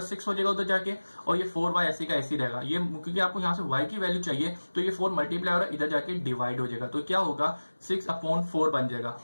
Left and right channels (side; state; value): both; inverted; correlation -1.00